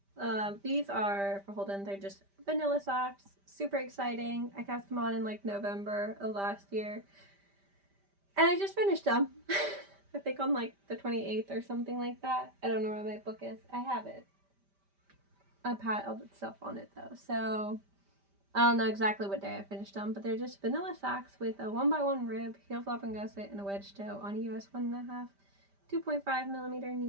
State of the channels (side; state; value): left; late; 5.1 ms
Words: These are for Holden. They're just vanilla socks. Super exciting. I cast them on in like November of last year. And I just finished them. I think on like the 28th or something like that. I don't know where my book is. I have it. I piled stuff on it though. So I don't know exactly what day I finished them, but they're just vanilla socks with a 1x1 rib, heel flap and gusset, and a wedge toe on a US 1.5, 2.5 millimeter